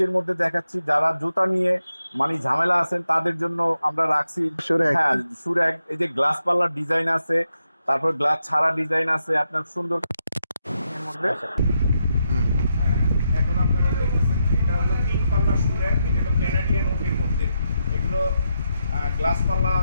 মধ্যে দেখাচ্ছি, যারা জুতা নিয়ে মানে ঝামেলা আছেন তাদের জন্য আমরা রাখছি। সুরেখ। হ্যাঁ, সুরেক, এই যে গ্লাস পাল্লার ডিজাইন আছে, তারপর গ্লাস ছাড়া ডিজাইন আছে আপনার সুন্দর এর মধ্যে। হুম। হ্যাঁ, এখন আপনারা দেখতেছেন এটা হলো 3 পাল্লা সুরেক, এটা হলো ক্যানাডিয়ান ওকের মধ্যে। এগুলো গ্লাস পাল্লা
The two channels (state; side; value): inverted; both; correlation -0.83